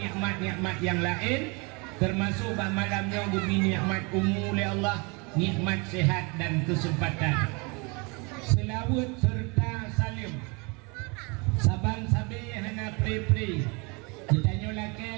nikmat-nikmat yang lain, termasuk bah malamnya gubi nikmat umum oleh Allah, nikmat sehat dan kesempatan. Selawat serta salim. Saban sabi hana pri-pri. Ditanya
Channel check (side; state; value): left; quieter; 29.9 dB